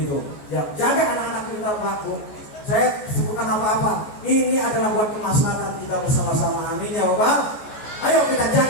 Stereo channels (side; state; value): right; late; 14 ms